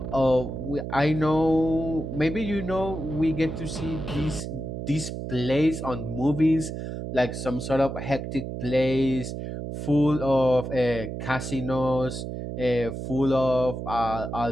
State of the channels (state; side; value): noise; right; hum, 6 dB below the sound